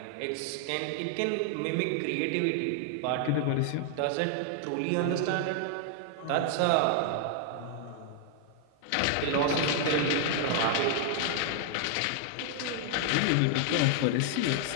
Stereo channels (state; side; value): different; both; correlation 0.00